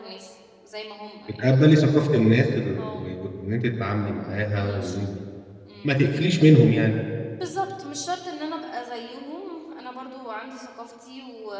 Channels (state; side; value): identical; both; correlation 1.00